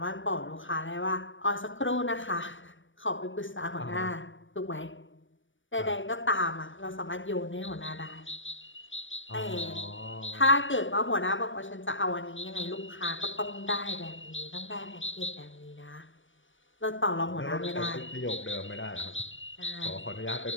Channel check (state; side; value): late; right; 0.56 ms